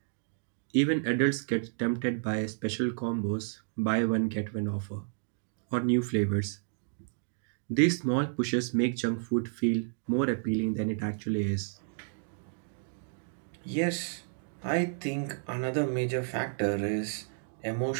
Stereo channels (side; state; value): left; silent; digital silence